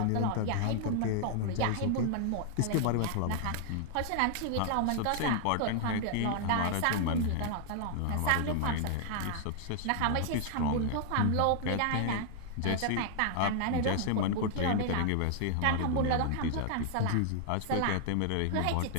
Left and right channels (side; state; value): both; different; correlation 0.00